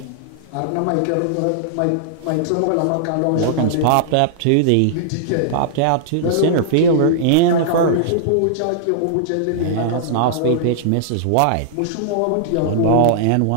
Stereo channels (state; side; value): different; both; correlation -0.01